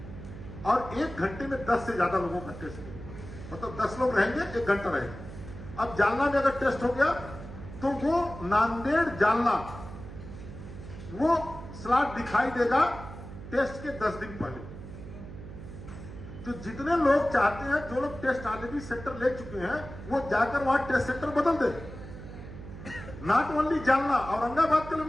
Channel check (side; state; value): right; noise; hum, 12 dB below the sound